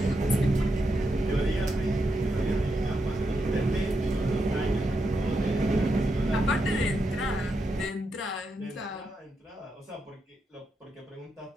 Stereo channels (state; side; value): normal; both; correlation 0.84